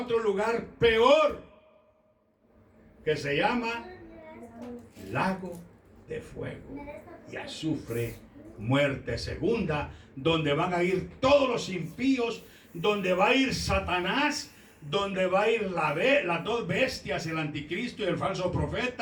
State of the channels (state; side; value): identical; both; correlation 1.00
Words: lugar peor, que se llama lago de fuego y azufre, muerte segunda, donde van a ir todos los impíos, donde va a ir Satanás, donde va a ir las dos bestias, el anticristo y el falso